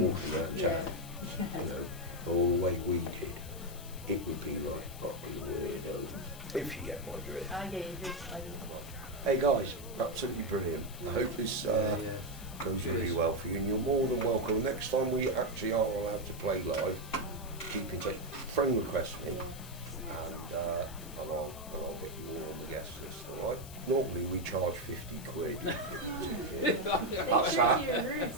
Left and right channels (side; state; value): left; noise; hiss, 16 dB below the sound